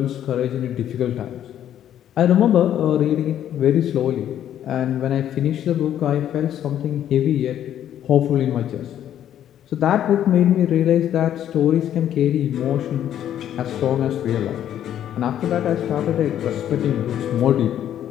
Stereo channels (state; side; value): quieter; right; 10.7 dB